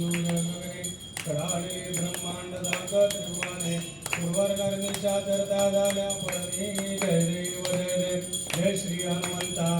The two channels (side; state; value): left; noise; hum, 26 dB below the sound